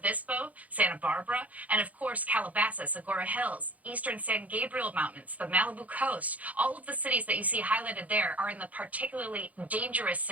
Santa Barbara, and of course Calabasas, Agoura Hills, eastern San Gabriel Mountains, the Malibu coast. All of the cities that you see highlighted there are in the particularly dangerous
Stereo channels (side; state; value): left; late; 0.073 ms